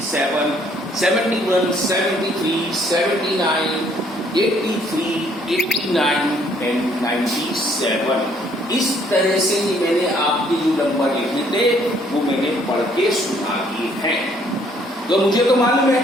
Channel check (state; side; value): normal; both; correlation 0.64